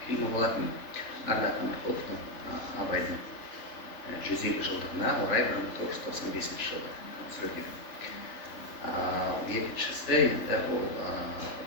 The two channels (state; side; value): late; right; 3.7 ms